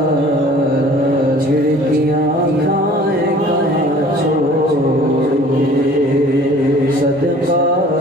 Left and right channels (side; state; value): both; normal; correlation 0.50